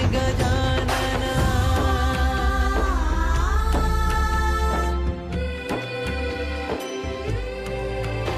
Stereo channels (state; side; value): identical; both; correlation 1.00